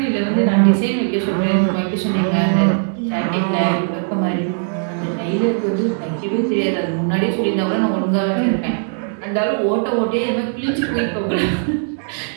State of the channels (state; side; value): silent; left; digital silence